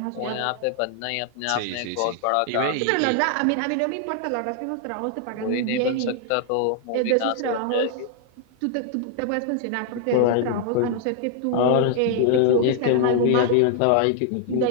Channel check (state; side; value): different; both; correlation -0.01